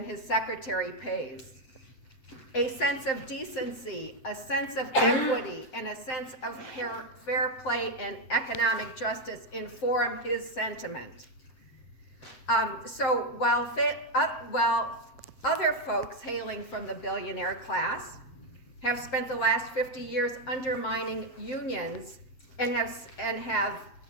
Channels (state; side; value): late; right; 7.7 ms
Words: his secretary pays. A sense of decency, a sense of equity, and a sense of fair play and economic justice inform his sentiment. So while other folks hailing from the billionaire class have spent the last 50 years undermining unions and